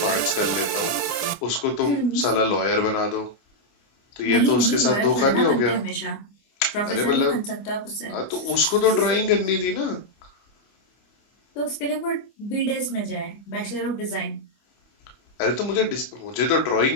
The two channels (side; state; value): right; late; 25 ms